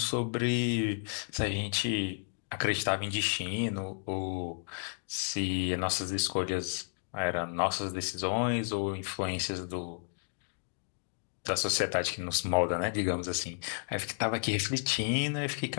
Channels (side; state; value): right; silent; digital silence